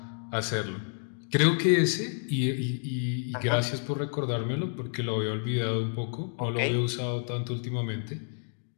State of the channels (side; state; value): right; silent; digital silence